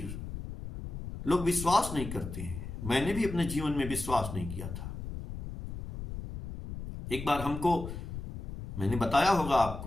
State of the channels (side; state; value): left; noise; rumble, 8 dB below the sound